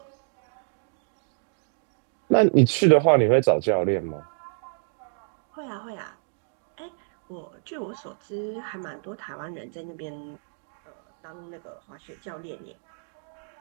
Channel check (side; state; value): left; silent; digital silence